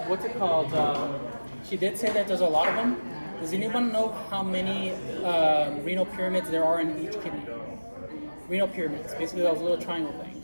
she did say that there's a lot of them. Does anyone know how many renal pyramids there are in each kidney? Renal pyramids, basically those little triangle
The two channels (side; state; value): both; inverted; correlation -1.00